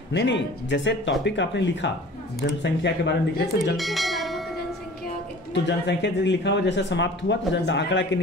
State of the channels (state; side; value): normal; both; correlation 0.45